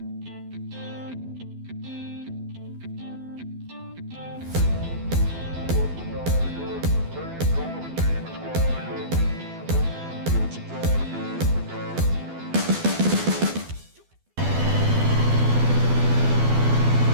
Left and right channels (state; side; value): late; left; 12 ms